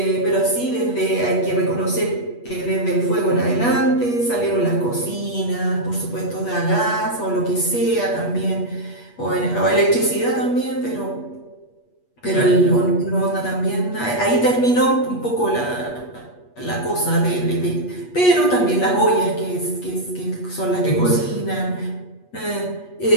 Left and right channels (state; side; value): late; right; 8.3 ms